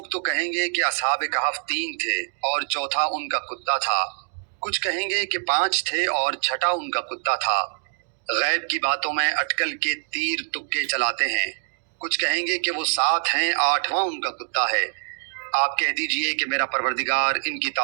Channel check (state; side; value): silent; left; digital silence